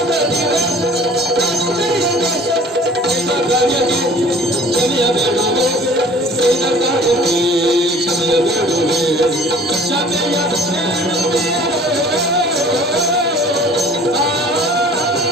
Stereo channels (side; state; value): both; normal; correlation 0.49